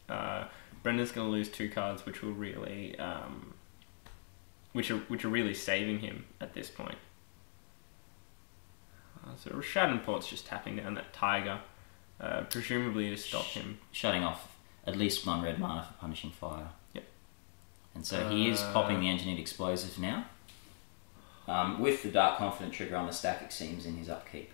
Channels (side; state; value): right; silent; digital silence